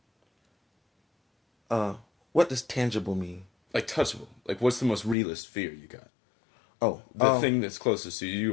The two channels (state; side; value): drops out; right; at 5.2 s